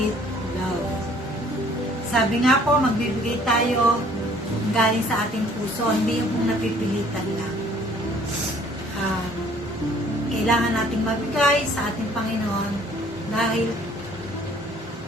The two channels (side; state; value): both; normal; correlation 0.57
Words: love. Sabi nga po, magbibigay tayo galing sa ating puso, hindi yung napipilitan lang. Kailangan nating magbigay sa ating Panginoon dahil